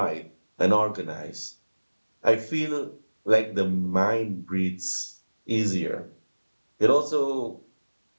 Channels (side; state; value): both; inverted; correlation -1.00